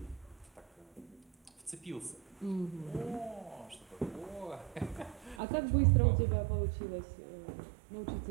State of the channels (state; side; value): drops out; left; at 5.4 s